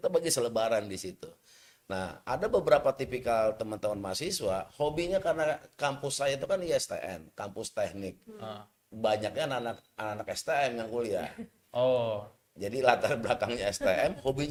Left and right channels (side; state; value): both; identical; correlation 1.00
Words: bagi selebaran di situ. Nah ada beberapa tipikal teman-teman mahasiswa, hobinya karena kampus saya itu kan ISTN, kampus teknik. Ah. Banyaknya anak-anak STM yang kuliah. Oh, Jadi latar belakangnya STM,